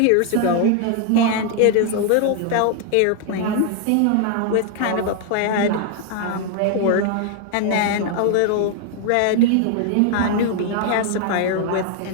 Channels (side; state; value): both; different; correlation 0.00